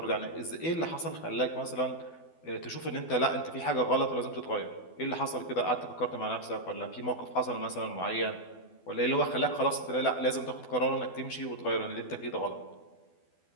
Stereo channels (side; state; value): right; late; 12 ms